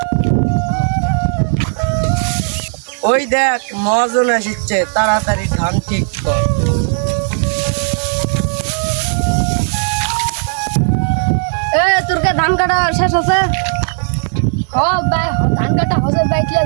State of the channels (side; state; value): left; silent; digital silence